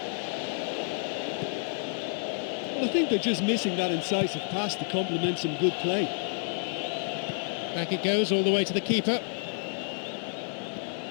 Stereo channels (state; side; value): silent; right; 58 dB below the other